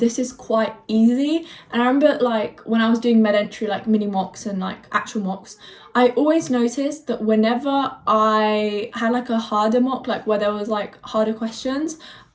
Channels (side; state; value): both; identical; correlation 1.00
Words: is quite easy. And I remember like when I was doing MedEntry, like mini mocks and like actual mocks, I always noticed that whenever I had like a harder mock, like where there was like harder questions,